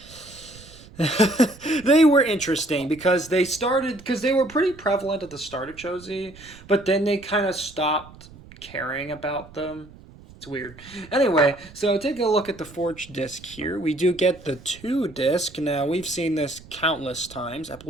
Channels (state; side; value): noise; right; rumble, 20 dB below the sound